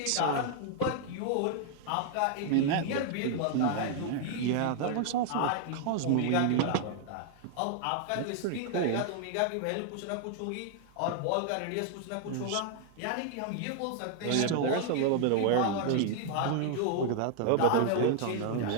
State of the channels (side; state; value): both; different; correlation 0.00